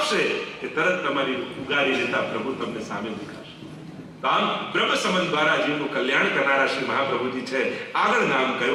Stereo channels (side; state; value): both; identical; correlation 1.00